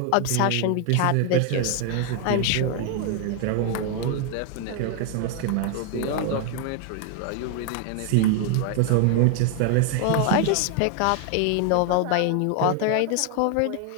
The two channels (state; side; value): different; both; correlation 0.00